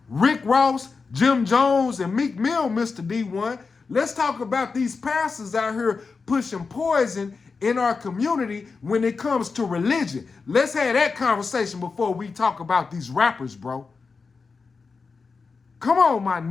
Rick Ross, Jim Jones, and Meek Mill, Mr. D1. Let's talk about these pastors out here pushing poison in our community when it comes to religion. Let's have that conversation before we talk about these rappers, bro. Come on, my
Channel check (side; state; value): right; quieter; 4.7 dB